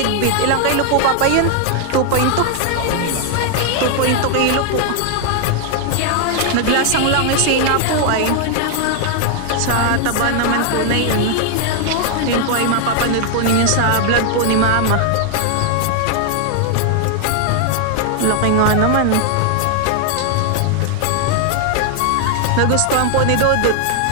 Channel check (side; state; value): both; different; correlation 0.00